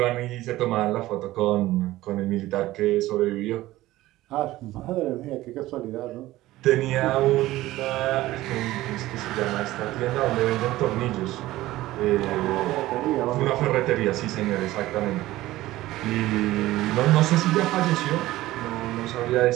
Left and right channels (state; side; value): quieter; left; 16.6 dB